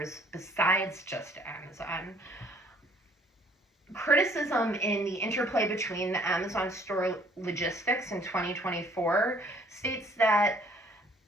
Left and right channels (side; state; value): both; normal; correlation 0.60